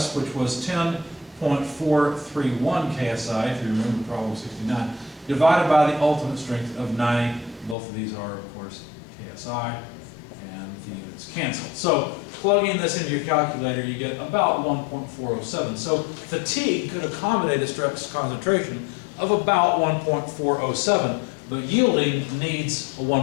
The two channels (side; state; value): right; drops out; at 7.8 s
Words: which was 10.431 KSI, if you remember problem 69, divided by the ultimate strength of 90. Both of these are, of course, KSI, and the units cancel. So plugging this into your calculator, you get about 1.407. So fatigue could accommodate a stress concentration of about 1.407, but yielding needs a